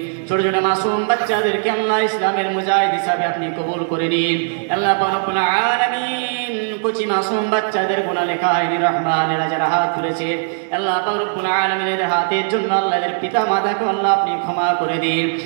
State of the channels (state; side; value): silent; left; digital silence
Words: ছোট ছোট মাসুম বাচ্চাদেরকে আল্লাহ ইসলামের মুজাহিদ হিসাবে আপনি কবুল করে নিন। আল্লাহ রব্বুল আলামিন কুচি মাসুম বাচ্চাদের গুনাহ লেখা হয়নি রহমান এরা যারা হাত তুলেছে আল্লাহ রব্বুল আলামিনের হাতের জন্য আল্লাহ এদের পিতা মাতাকে আল্লাহ আপনি ক্ষমা করে দিন।